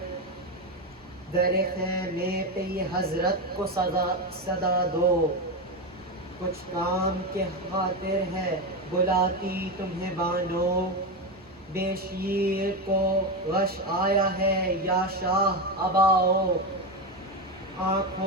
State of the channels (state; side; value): normal; both; correlation 0.13